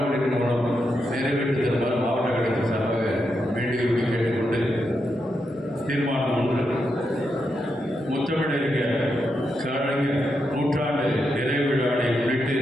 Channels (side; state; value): both; normal; correlation 0.84